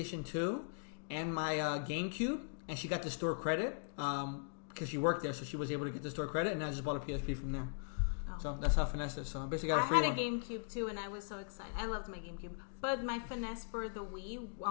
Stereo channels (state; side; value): silent; right; digital silence